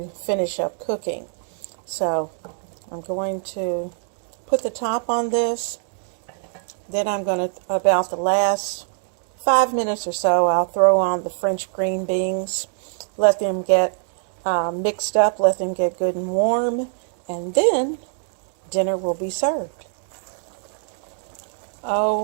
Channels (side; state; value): left; silent; digital silence